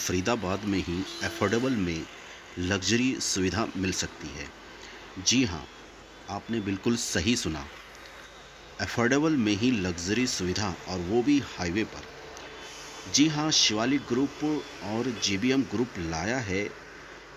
में ही अफोर्डेबल में लग्ज़री सुविधा मिल सकती है। जी हाँ, आपने बिल्कुल सही सुना। अफोर्डेबल में ही लग्ज़री सुविधा, और वो भी हाईवे पर। जी हाँ, शिवालिक ग्रुप और जेबीएम ग्रुप लाया है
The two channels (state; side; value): identical; both; correlation 1.00